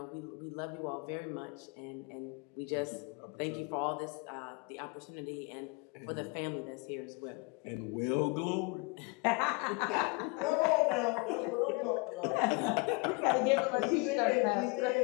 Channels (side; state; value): right; quieter; 28.7 dB